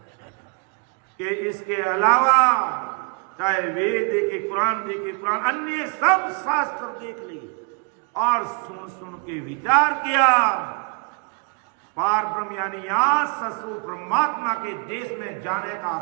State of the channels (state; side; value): quieter; left; 35.1 dB